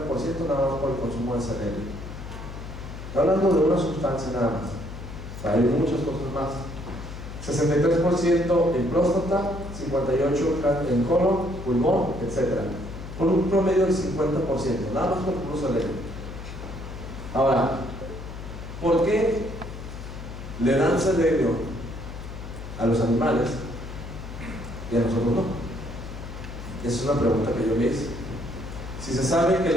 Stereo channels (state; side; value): noise; left; hum, 10 dB below the sound